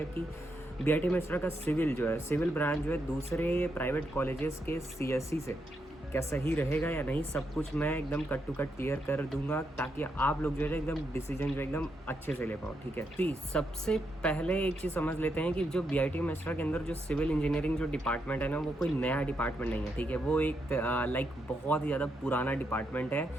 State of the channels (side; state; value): both; normal; correlation 0.81